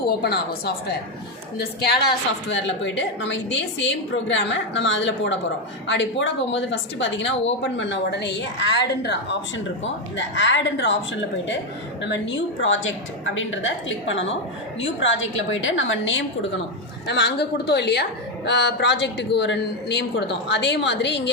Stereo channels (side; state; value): both; normal; correlation 0.07